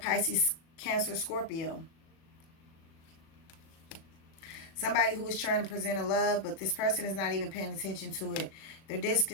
Cancer, Scorpio. Somebody who is trying to present a love, but this person is not even paying attention to it. They're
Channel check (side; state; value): right; late; 37 ms